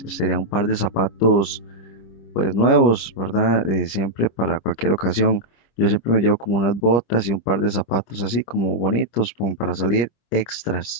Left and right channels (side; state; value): right; late; 26 ms